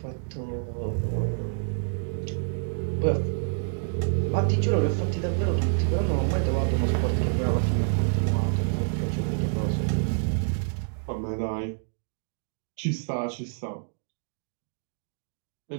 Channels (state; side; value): silent; left; digital silence